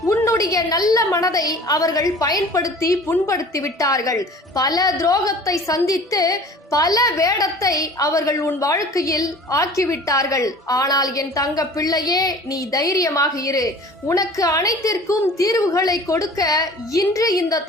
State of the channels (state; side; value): normal; both; correlation 0.44